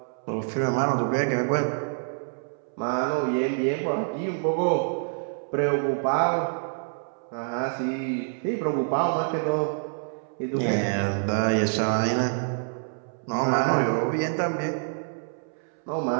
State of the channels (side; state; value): left; silent; 60 dB below the other